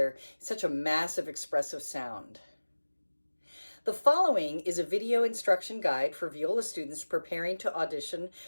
in such a massive expressive sound. The following is a video instruction guide for viola students preparing to audition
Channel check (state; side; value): inverted; both; correlation -1.00